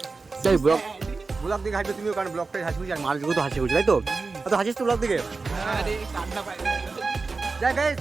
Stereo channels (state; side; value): quieter; left; 4.1 dB